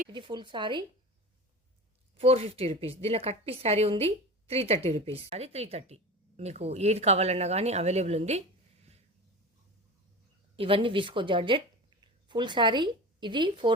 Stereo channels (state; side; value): normal; both; correlation 0.31